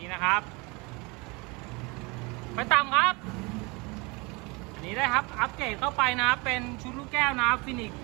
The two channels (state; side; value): quieter; left; 27.2 dB